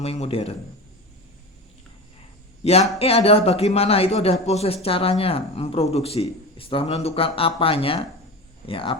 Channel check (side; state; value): both; normal; correlation 0.28